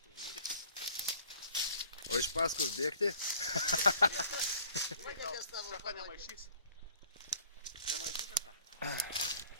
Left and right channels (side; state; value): both; inverted; correlation -0.52